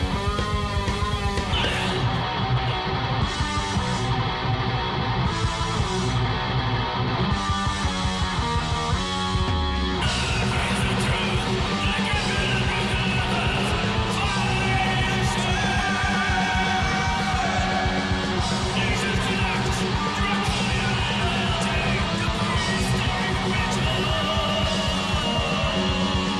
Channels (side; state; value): both; identical; correlation 1.00